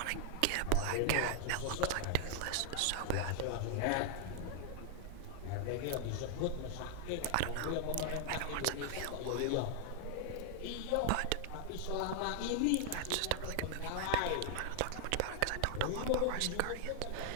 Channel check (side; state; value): both; different; correlation 0.00